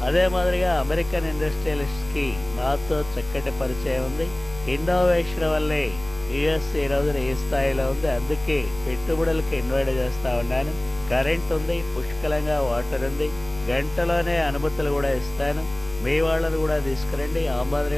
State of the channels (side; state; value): left; noise; rumble, 16 dB below the sound